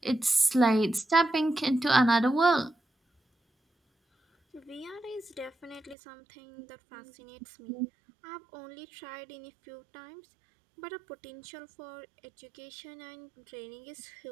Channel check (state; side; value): drops out; left; at 6.0 s